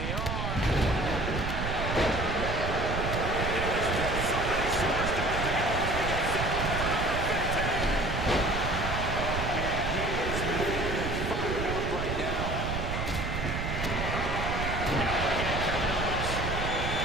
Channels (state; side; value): noise; right; rumble, 3 dB below the sound